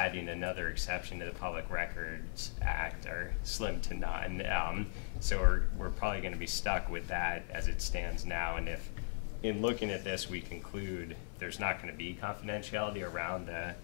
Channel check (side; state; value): right; silent; 52 dB below the other